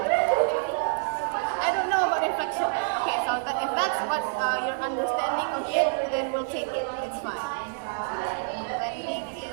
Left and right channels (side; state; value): left; silent; digital silence